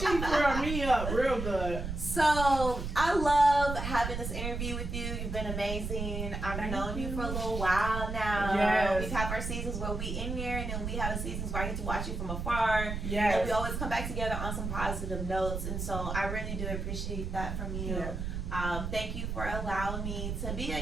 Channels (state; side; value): noise; right; rumble, 4 dB below the sound